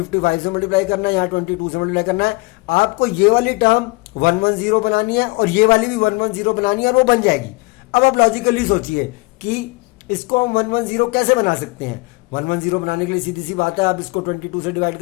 से मल्टीप्लाई करना है, यहाँ 22 से मल्टीप्लाई करना है, आपको ये वाली टर्म 110 बनानी है और ये वाली भी 110 बनानी है, और वो बन जाएगी। अब आप लॉजिकली सोचिए कि इसको हम 110 कैसे बना सकते हैं। 110 बनाने के लिए सीधी सी बात है, आप इसको 22 से डिवाइड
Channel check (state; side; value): quieter; right; 26.4 dB